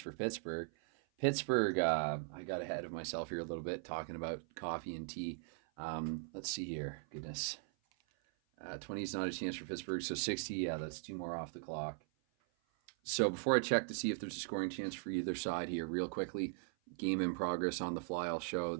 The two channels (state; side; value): silent; left; 51 dB below the other